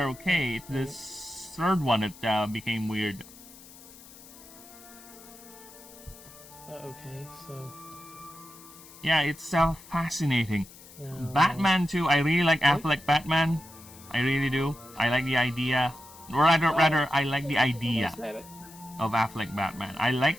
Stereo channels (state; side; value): noise; left; hiss, 20 dB below the sound